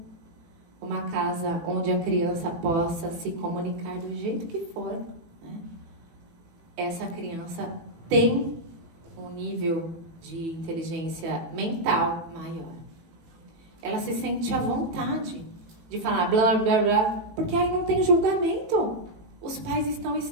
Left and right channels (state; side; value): late; left; 18 ms